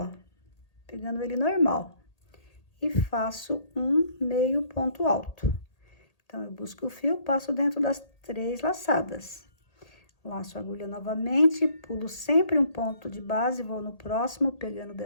pegando ele normal, e faço um meio ponto alto. Então, eu busco o fio, passo dentro das 3 laçadas. Laço a agulha novamente, pulo sempre um ponto de base, vou no próximo, pegando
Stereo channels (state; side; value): late; right; 1.8 ms